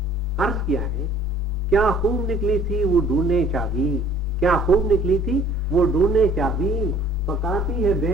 अर्ज किया है, क्या खूब निकली थी वो ढूंढने चाबी, क्या खूब निकली थी वो ढूंढने चाबी, पकाती है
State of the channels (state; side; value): normal; both; correlation 0.53